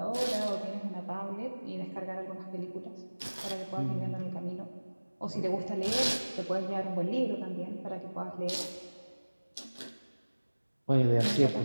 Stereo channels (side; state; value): both; inverted; correlation -1.00